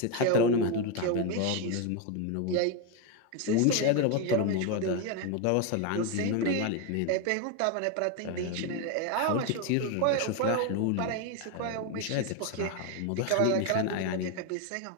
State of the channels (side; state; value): both; different; correlation 0.02